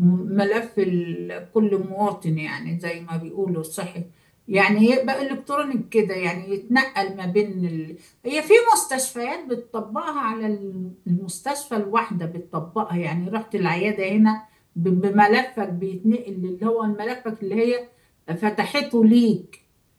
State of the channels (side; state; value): both; identical; correlation 1.00